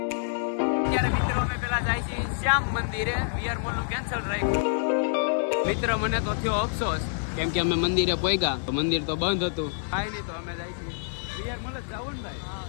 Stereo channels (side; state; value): right; silent; digital silence